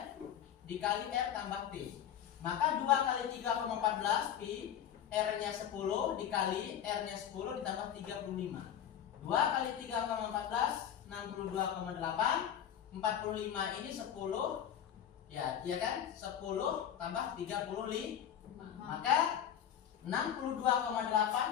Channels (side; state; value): right; quieter; 9.7 dB